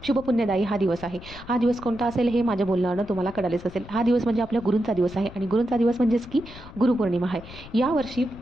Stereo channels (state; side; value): noise; left; rumble, 16 dB below the sound